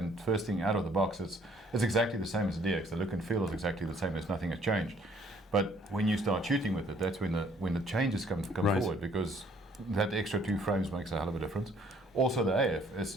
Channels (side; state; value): both; normal; correlation 0.62